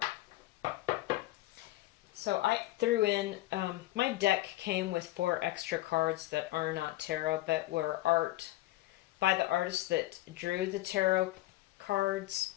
So I threw in, my deck came with 4 extra cards that are not tarot, but were art by the artist that drew the tarot cards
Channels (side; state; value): right; quieter; 16.9 dB